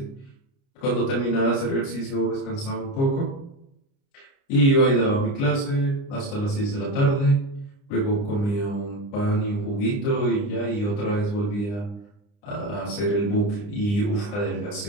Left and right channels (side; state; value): right; late; 29 ms